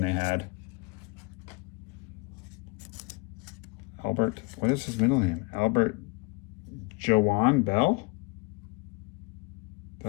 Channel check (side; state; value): right; quieter; 27.8 dB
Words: they had. Albert, what is his middle name? Albert Joan Bell?